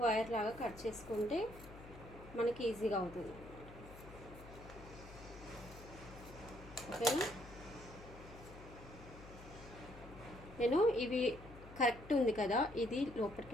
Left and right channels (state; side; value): noise; left; hum, 16 dB below the sound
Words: లాగా కట్ చేసుకుంటే మనకి ఈజీగా అవుతుంది. ఓకేనా? నేను ఇవి కరెక్ట్ ఉంది కదా, ఇది